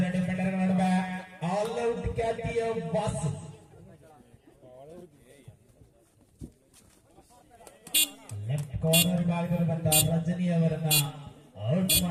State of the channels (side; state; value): both; identical; correlation 1.00